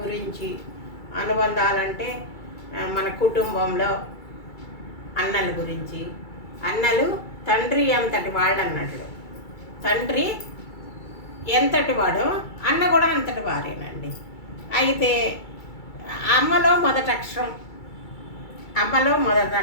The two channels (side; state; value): right; late; 2.3 ms